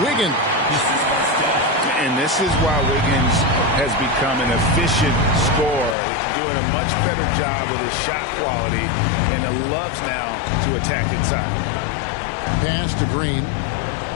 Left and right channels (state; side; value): drops out; right; at 6.0 s